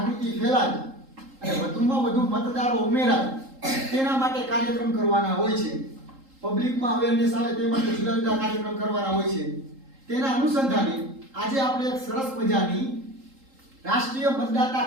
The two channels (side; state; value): left; late; 3.8 ms